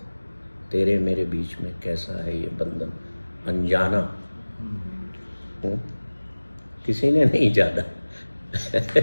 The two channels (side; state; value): both; inverted; correlation -1.00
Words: तेरे मेरे बीच में कैसा है ये बंधन अनजाना। किसी ने नहीं जाना